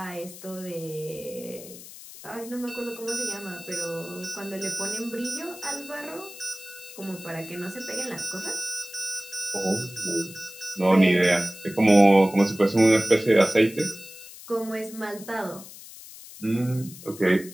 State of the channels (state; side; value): noise; left; hiss, 16 dB below the sound